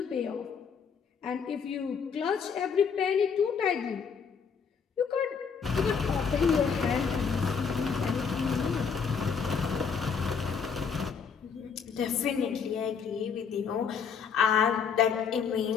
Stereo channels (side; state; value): right; quieter; 6.3 dB